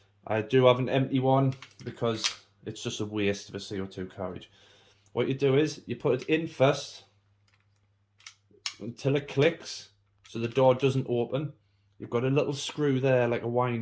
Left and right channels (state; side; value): identical; both; correlation 1.00